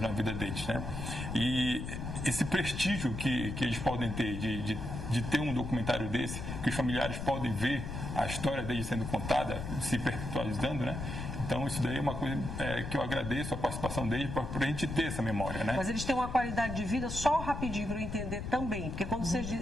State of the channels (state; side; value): noise; left; rumble, 6 dB below the sound